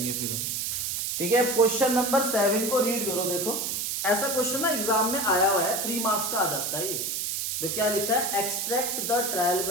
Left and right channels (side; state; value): right; noise; hiss, 1 dB below the sound